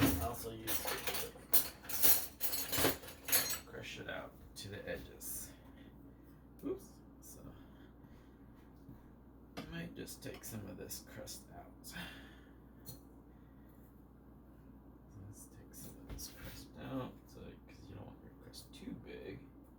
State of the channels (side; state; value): both; identical; correlation 1.00